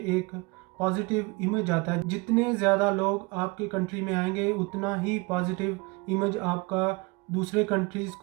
एक पॉजिटिव इमेज आता है। जितने ज़्यादा लोग आपके कंट्री में आएंगे उतना ही पॉजिटिव इमेज आपका दूसरे कंट्रीज़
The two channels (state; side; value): quieter; left; 26.6 dB